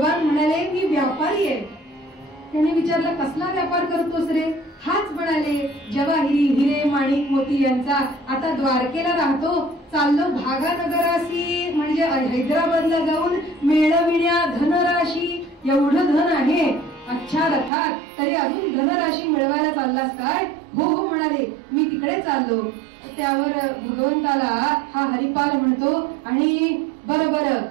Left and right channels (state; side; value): drops out; left; at 17.7 s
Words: म्हणाले, मी व्यापारी आहे. त्याने विचारलं, कसला व्यापार करतोस रे. हाच म्हणाले, जवाहिरी हिरे माणिक मोती यांचा. आता द्वारकेला राहतो, चाललो भागानगरासी म्हणजे हैदराबादला जाऊन मिळविण्या धनराशी. एवढं धन आहे अच्छा रथात, तरी अजून धनराशी मिळवायला चाललास काय. हो हो म्हणाले, मी तिकडे चाललो. त्यावर भगवंताला हा हरिपाल म्हणतो, आणि बरं बरं